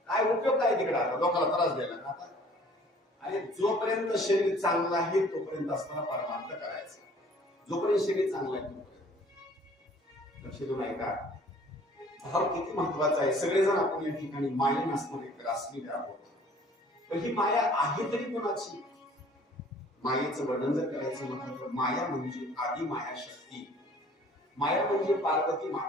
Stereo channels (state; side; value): normal; both; correlation 0.53